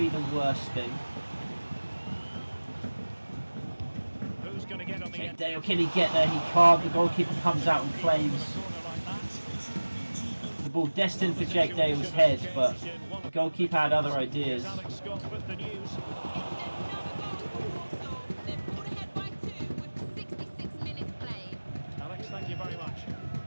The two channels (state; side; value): inverted; both; correlation -1.00